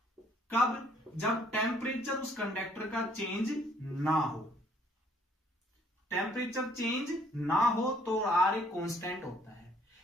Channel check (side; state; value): both; normal; correlation 0.63